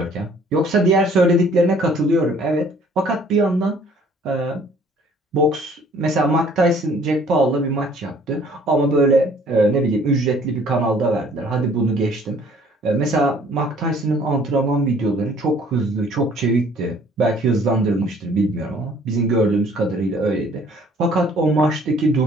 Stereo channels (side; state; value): both; normal; correlation 0.57